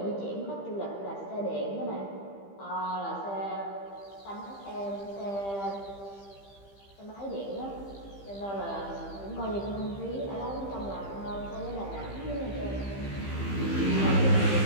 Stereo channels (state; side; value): late; right; 15 ms